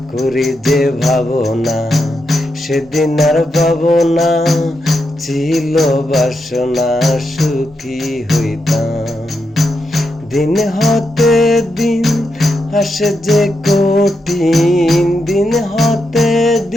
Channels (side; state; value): both; normal; correlation 0.84